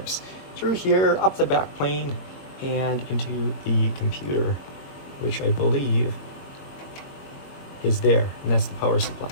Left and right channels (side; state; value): right; late; 22 ms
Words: through here, up the back plane, and into the computer, which I believe is there, and that's the power supply.